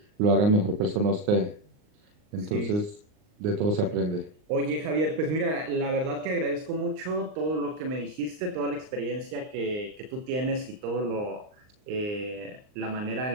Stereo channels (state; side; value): late; left; 39 ms